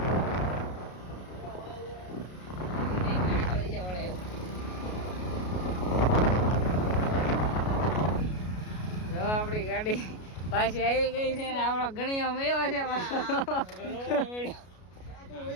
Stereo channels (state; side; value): late; right; 33 ms